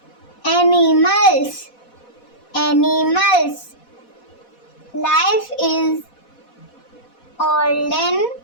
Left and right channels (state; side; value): late; right; 4.1 ms